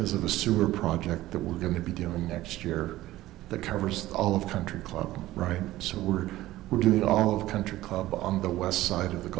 of a sewer project that we're going to be doing next year that covers all of country club, right? So we're doing all of country club on the west side of the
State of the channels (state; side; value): quieter; left; 16.0 dB